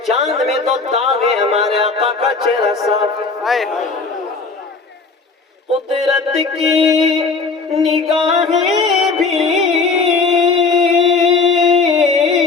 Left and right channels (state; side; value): quieter; right; 4.4 dB